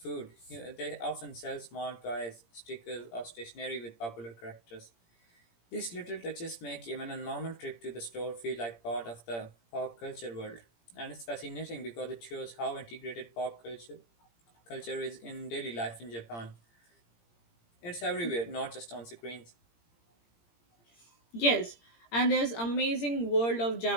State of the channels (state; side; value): late; right; 17 ms